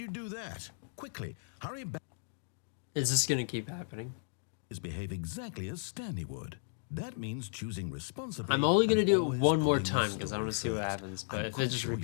do that? Quickly, hurry back. Is this gonna keep happening? Behave exactly as Stanley would. That means choosing responsibly. I'm only gonna and do it always one more putting the time because I story want to see what first. happens. But I'm if it quite just sure you'll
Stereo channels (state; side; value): silent; right; digital silence